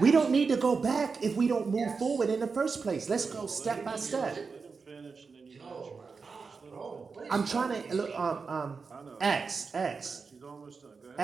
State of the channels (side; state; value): left; quieter; 4.9 dB